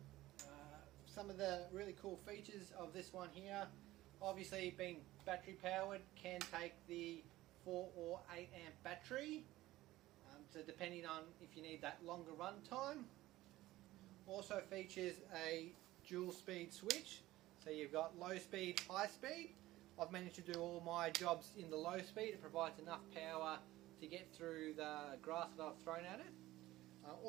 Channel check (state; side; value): quieter; left; 16.7 dB